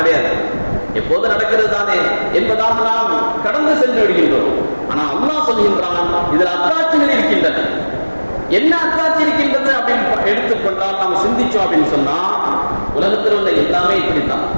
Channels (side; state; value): both; inverted; correlation -1.00